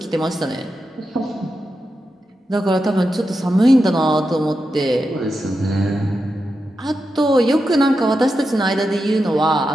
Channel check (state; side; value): normal; both; correlation 0.88